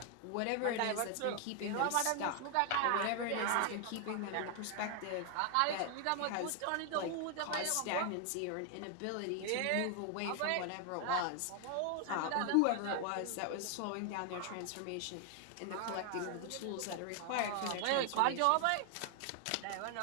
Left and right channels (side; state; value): both; different; correlation 0.00